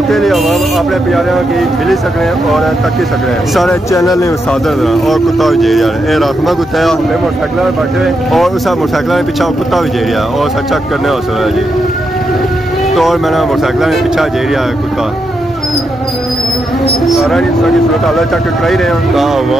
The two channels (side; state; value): both; normal; correlation 0.83